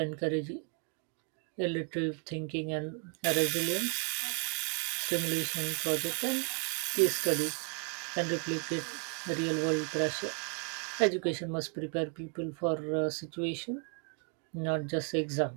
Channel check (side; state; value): left; quieter; 39.3 dB